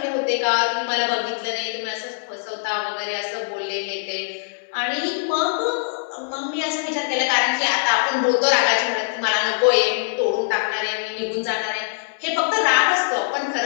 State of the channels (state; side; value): silent; right; 64 dB below the other